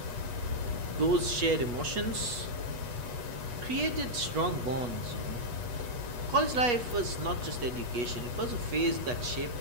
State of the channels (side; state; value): left; late; 8.2 ms